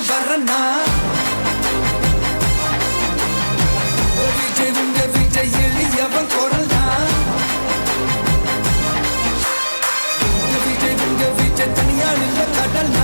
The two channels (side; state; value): both; inverted; correlation -1.00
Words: வரனா விஜய் உங்க விஜய் எளியவன் குரல்னா விஜய் உங்க விஜய் தனியால் இல்ல